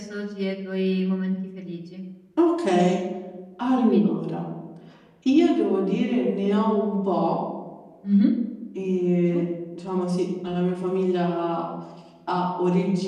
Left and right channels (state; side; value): identical; both; correlation 1.00